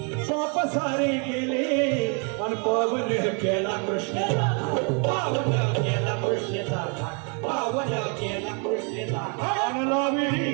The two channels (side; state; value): left; quieter; 36.9 dB